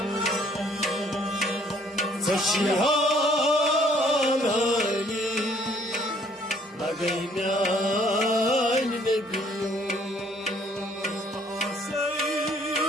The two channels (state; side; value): normal; both; correlation 0.61